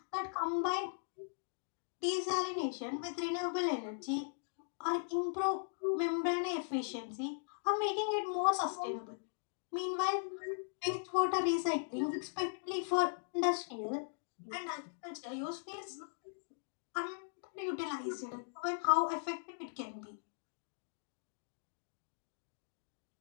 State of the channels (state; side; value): silent; right; digital silence